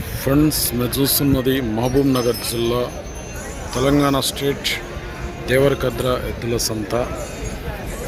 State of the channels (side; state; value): both; identical; correlation 1.00